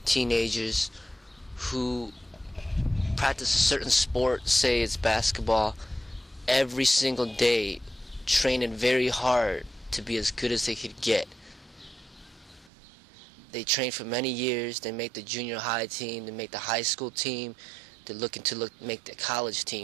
teenagers who practice a certain sport, say it's basketball, every single day, training very hard to be as good as they could get. They train for many years, they make the junior high team, they make the high school team, they're looking to make the college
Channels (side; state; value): left; drops out; at 12.7 s